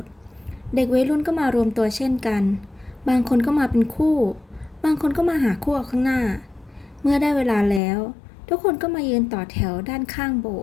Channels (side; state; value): right; drops out; at 7.8 s